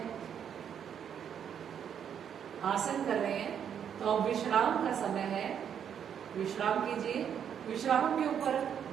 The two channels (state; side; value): quieter; left; 8.4 dB